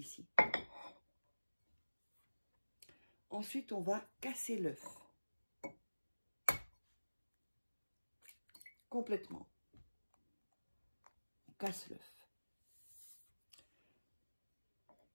Ensuite, on va casser l'œuf. Complètement. On casse l'œuf.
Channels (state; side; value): inverted; both; correlation -1.00